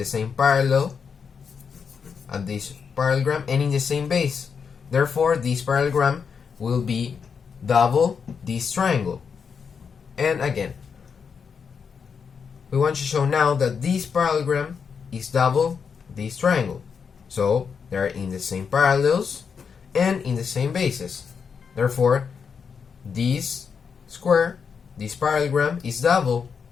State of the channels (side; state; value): right; quieter; 6.3 dB